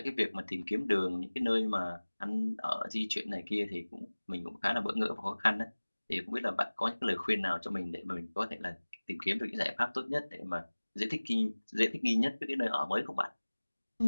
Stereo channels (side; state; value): both; inverted; correlation -1.00